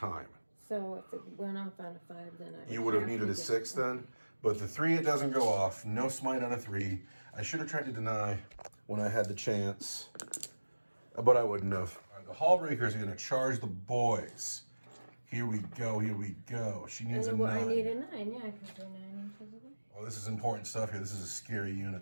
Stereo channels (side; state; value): both; inverted; correlation -1.00